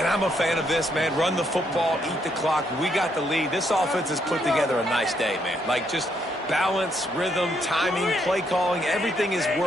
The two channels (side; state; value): both; normal; correlation 0.74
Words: I'm a fan of this, man. Run the football, eat the clock. We got the lead. This offense has put together a nice day, man. Just balance, rhythm, timing, play calling, everything has